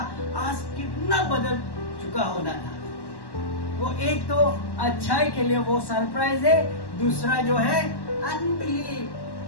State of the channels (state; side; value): late; right; 1.1 ms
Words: आज कितना बदल चुका होना था। वो एक तो अच्छाई के लिए वो सरप्राइज है, दूसरा जो है अनबिलीव,